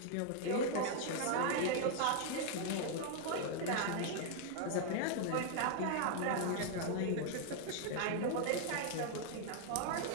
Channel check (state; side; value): different; both; correlation 0.00